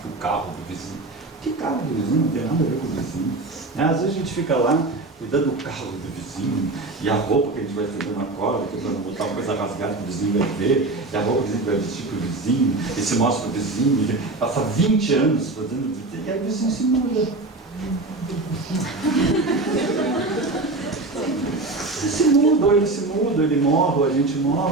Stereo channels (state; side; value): quieter; left; 3.1 dB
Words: o carro do vizinho. Que carro do vizinho? Não tem nada a ver com o vizinho. Às vezes a gente fica lá cuidando do carro do vizinho, e a roupa que a gente vai estender na cola, que para não botar uma coisa rasgada que o vizinho vai ver, e a roupa que a gente vai vestir para o vizinho, e se mostra para o vizinho, ele passa 20 anos fazendo, e aí o vizinho se muda. Ele se muda, ou ele morre, ou a gente